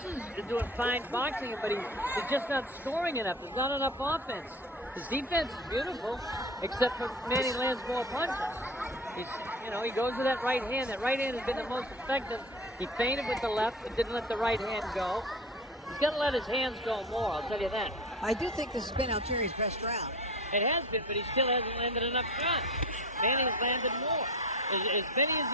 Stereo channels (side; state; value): both; normal; correlation 0.34